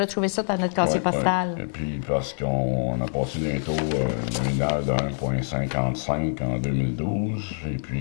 retrouver ça dans notre casier postal. Et puis, parce qu'on a passé des taux nominaires de 1,55 en 2012, et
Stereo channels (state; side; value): silent; right; digital silence